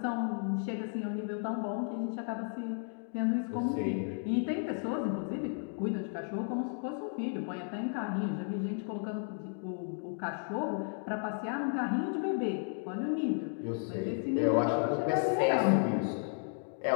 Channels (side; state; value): right; silent; 55 dB below the other